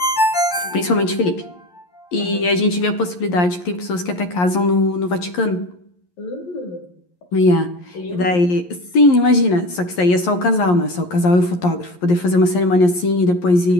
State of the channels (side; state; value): right; late; 11 ms